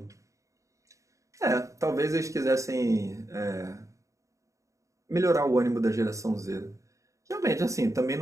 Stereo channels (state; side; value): late; left; 0.15 ms